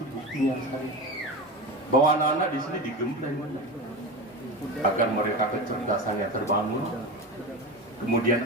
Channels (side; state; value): both; normal; correlation 0.25